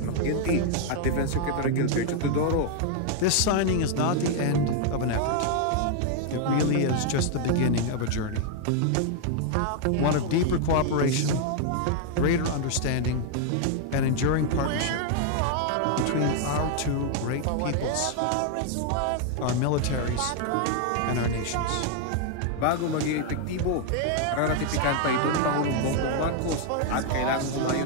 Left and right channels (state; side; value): different; both; correlation 0.00